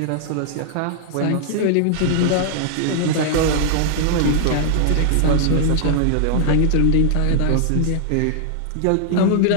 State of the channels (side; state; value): both; different; correlation -0.01